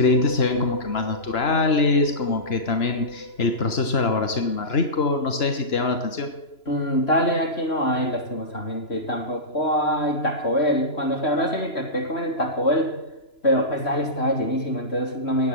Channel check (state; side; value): late; right; 2.9 ms